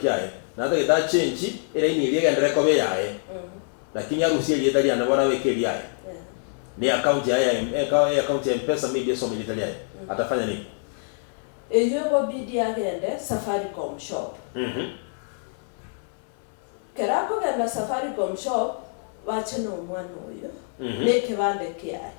Na hata kita change ile ini liya ndere kobe yae. Lakini harusi ile itali anabona weke yae. Ni account ya account ya M-Pesa media so military yae. Atafanya nini? Eyo go bidi agende Safaricom shop. Kerako genda Safaricom shop wacheno mwana oyo. Neke bande kiaye.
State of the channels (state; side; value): silent; right; 61 dB below the other